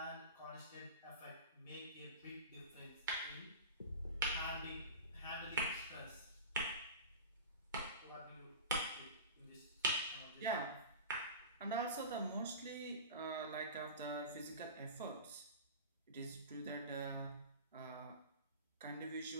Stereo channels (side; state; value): both; inverted; correlation -0.32